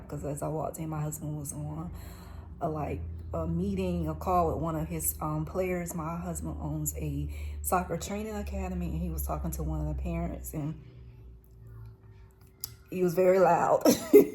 as I walked in, my husband was on a meeting, a call with one of his players. My husband owns a soccer training academy, and he was talking to one of the parents, and he was very loud.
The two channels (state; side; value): identical; both; correlation 1.00